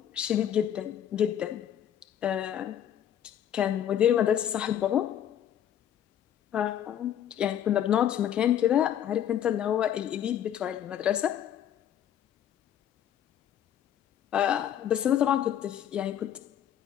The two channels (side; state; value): right; quieter; 10.2 dB